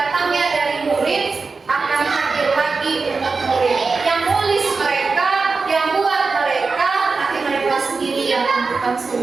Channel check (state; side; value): quieter; left; 4.4 dB